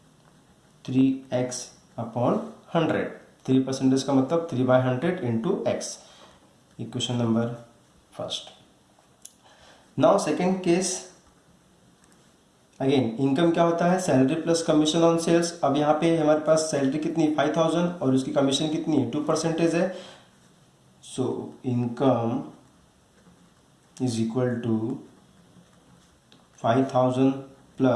3x upon 100. 3% का मतलब 3/100 into x. Equation number first. Now second case. Again income क्या होता है? Salary plus commission on sales. अब यहाँ पे हमारे पास सैलरी कितनी? 5,000 और उसकी कमीशन कितनी है? 2% है. So income is equal to 5,000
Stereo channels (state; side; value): identical; both; correlation 1.00